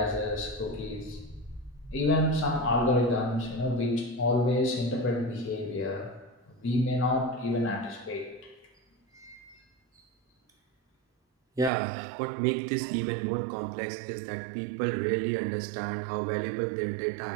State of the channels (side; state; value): left; drops out; at 11.7 s